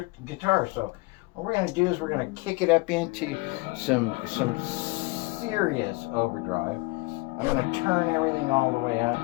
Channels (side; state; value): right; quieter; 24.6 dB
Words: guitar. So what we're going to do is we're going to kick it up into some serious overdrive. I'm going to turn everything all the way up,